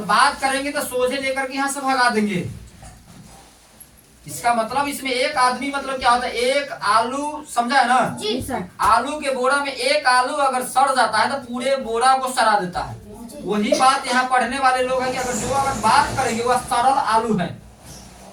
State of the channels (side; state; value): both; identical; correlation 1.00